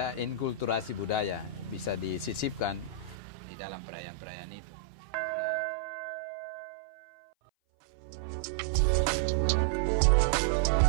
inkulturasi budaya, bisa disisipkan di dalam perayaan-perayaan itu.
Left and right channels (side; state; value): left; drops out; at 3.2 s